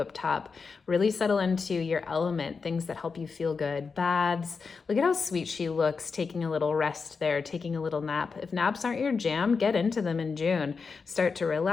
top. Really settle into your element, things that help you feel good. Baths. Look at how sweet she looks, taking a little rest there, taking a little nap. If naps aren't your jam, get into them in June. Start to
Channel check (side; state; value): right; quieter; 5.0 dB